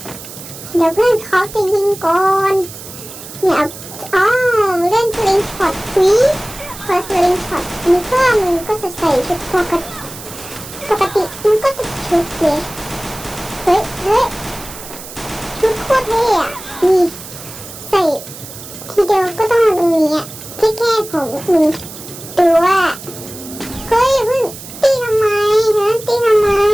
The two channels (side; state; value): right; noise; hiss, 14 dB below the sound